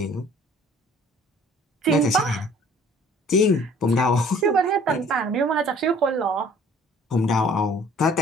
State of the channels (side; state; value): both; normal; correlation 0.54